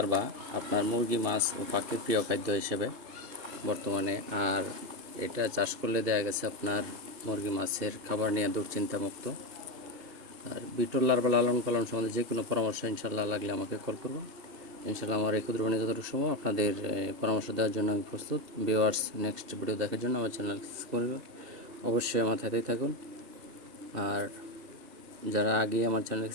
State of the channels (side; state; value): left; late; 2.7 ms